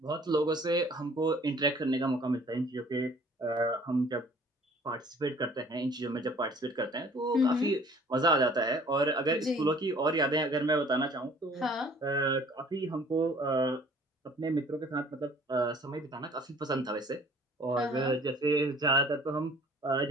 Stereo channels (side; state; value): both; normal; correlation 0.53